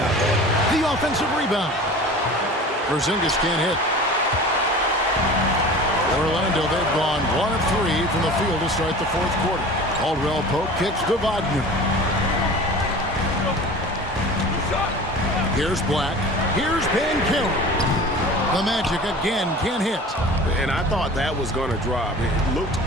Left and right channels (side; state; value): both; normal; correlation 0.39